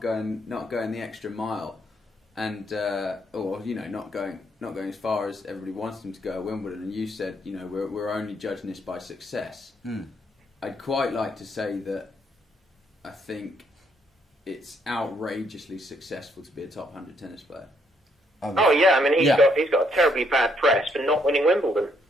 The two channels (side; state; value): both; normal; correlation 0.72